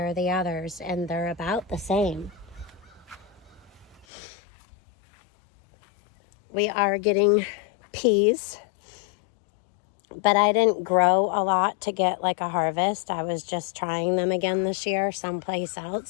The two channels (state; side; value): drops out; right; at 4.0 s